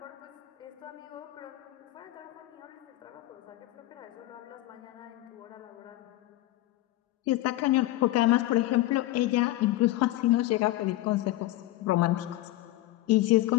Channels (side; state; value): right; quieter; 16.5 dB